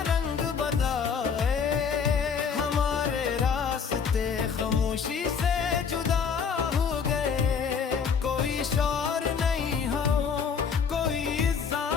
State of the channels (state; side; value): quieter; right; 6.3 dB